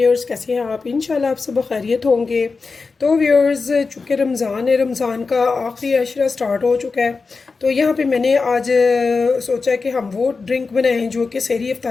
कैसे हैं आप? इंशाल्लाह आप सब खैरियत होंगे। तो व्यूअर्स, चूँकि रमज़ान है, रमज़ान का आखिरी अशरा स्टार्ट हो चुका है, तो यहाँ पे मैंने आज सोचा कि हम वो ड्रिंक बनाएं जो कि सहरी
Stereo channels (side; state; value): right; quieter; 4.4 dB